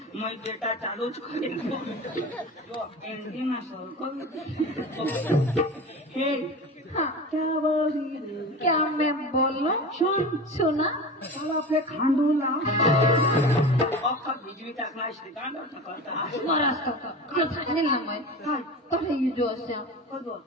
मैं बेटा चालूच करेन यो एंडिंग असं हे क्या बोली क्या मैं बोलूं? सुना चला आपले खांडूला अख्खा भिजवी टाकणार श्रीकांत करता महाराष्ट्र जो सांगेल ना मैं काही जो असे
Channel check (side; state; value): both; normal; correlation 0.31